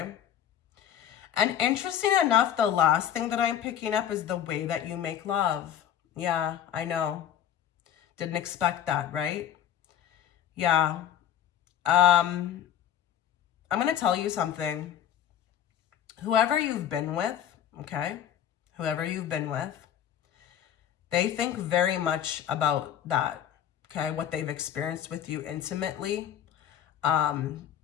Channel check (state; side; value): quieter; right; 10.2 dB